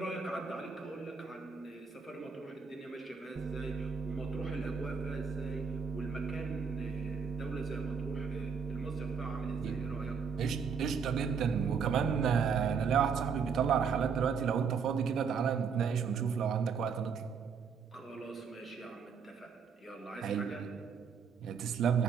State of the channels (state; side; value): quieter; left; 6.0 dB